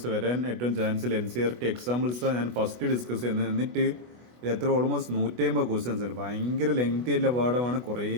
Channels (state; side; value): late; left; 24 ms